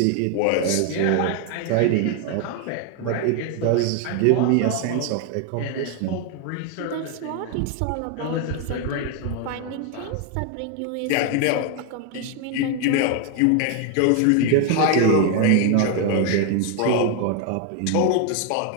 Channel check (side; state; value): both; different; correlation 0.01